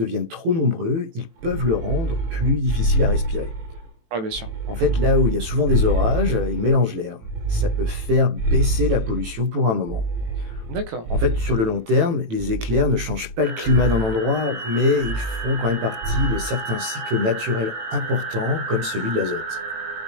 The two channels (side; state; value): left; late; 18 ms